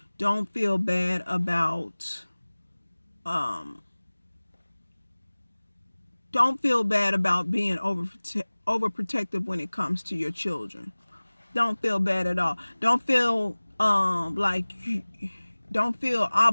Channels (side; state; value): both; inverted; correlation -1.00